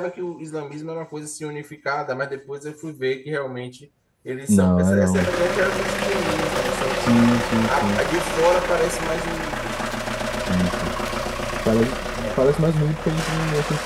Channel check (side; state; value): both; identical; correlation 1.00